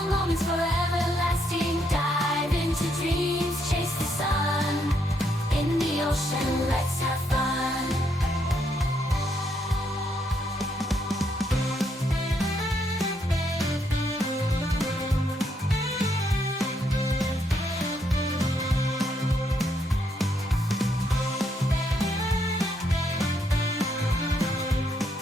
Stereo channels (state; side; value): normal; both; correlation 0.75